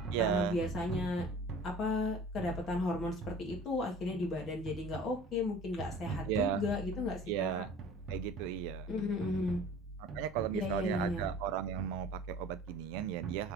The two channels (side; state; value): both; normal; correlation 0.44